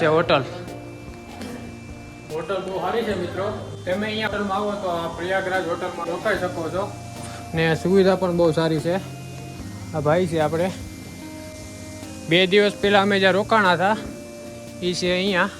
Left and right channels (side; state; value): both; identical; correlation 1.00